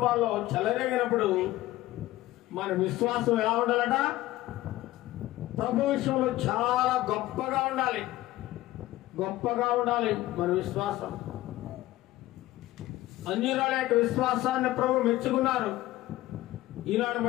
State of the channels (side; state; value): right; quieter; 16.4 dB